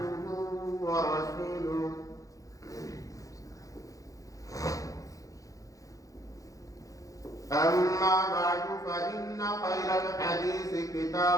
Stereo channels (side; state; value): right; late; 0.16 ms